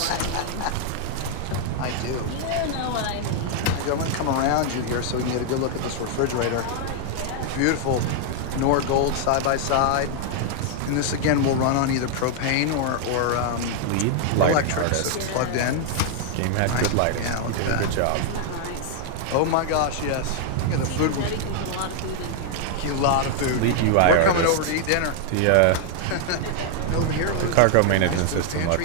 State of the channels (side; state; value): both; different; correlation 0.00